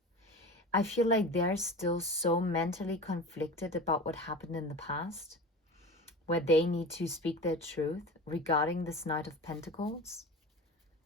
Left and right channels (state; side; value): normal; both; correlation 0.32